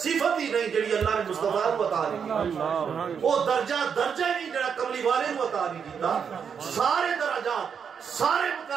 ہی نہیں جڑی اللہ نے مصطفیٰ کو عطا نہیں کی، او درجہ ہی نہیں جڑا کملی والے کو عطا نہیں کیتا، سارے درجات، سارے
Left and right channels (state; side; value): quieter; left; 6.9 dB